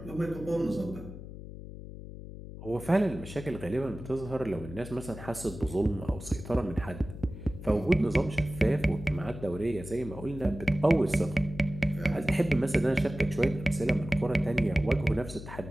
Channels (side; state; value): left; noise; hum, 12 dB below the sound